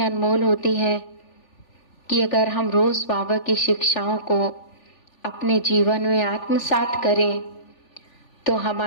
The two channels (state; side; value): late; right; 3.4 ms